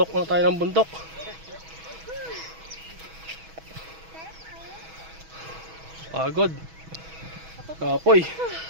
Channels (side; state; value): left; late; 6.2 ms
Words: na tayo ng bundok. Pagod. Kapoy.